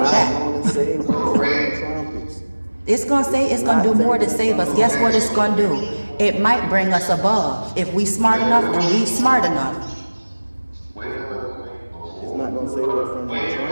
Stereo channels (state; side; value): inverted; both; correlation -1.00